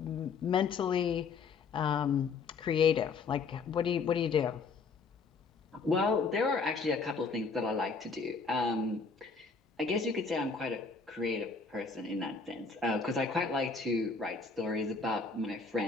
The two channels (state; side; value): quieter; right; 4.8 dB